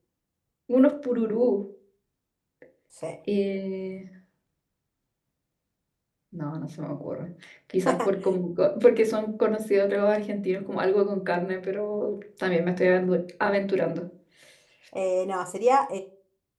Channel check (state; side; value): identical; both; correlation 1.00